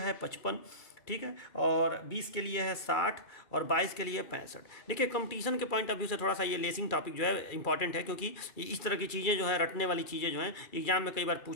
55, ठीक है, और 20 के लिए है 60 और 22 के लिए 65। देखिए कंपटीशन के पॉइंट ऑफ व्यू से थोड़ा सा ये लेसिंग टॉपिक जो है इंपॉर्टेंट है, क्योंकि इस तरह की चीज़ें जो है रटने वाली चीज़ें जो हैं एग्जाम में कई बार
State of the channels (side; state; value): right; late; 2.3 ms